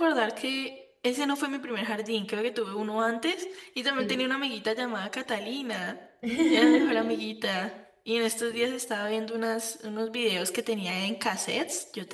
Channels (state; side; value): identical; both; correlation 1.00